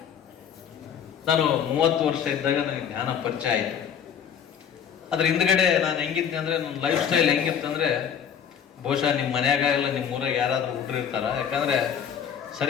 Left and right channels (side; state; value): right; quieter; 8.1 dB